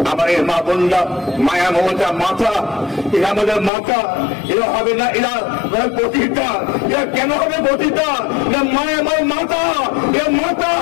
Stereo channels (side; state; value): right; drops out; at 3.7 s